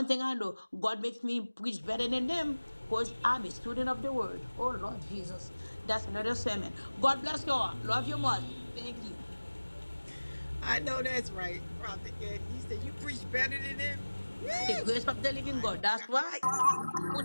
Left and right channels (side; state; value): both; inverted; correlation -1.00